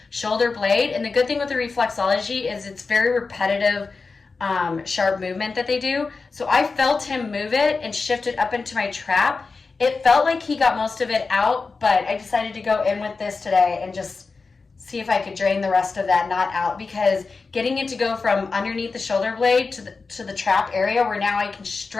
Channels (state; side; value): quieter; right; 4.3 dB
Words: shoulder blade. And the good thing with the reflexology is it's very repetitive, sharp movement that they do. So I felt him move it and shift it up into my trap. It felt like he got most of it out, but I decided to go in with this today and just see if I could drain the rest of that knot out, because getting it to go from underneath the shoulder blade to the trap area where now I can